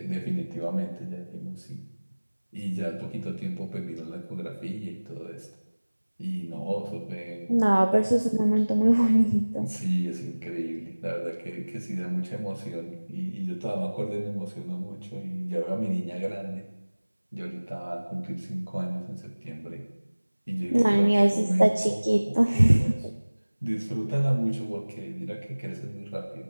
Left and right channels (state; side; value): inverted; both; correlation -1.00